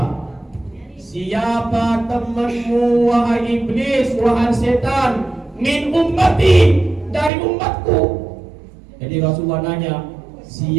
Siapa temanmu wahai iblis, wahai setan? Min ummati, dari umatku. Jadi Rasulullah nanya,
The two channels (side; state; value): left; drops out; at 7.3 s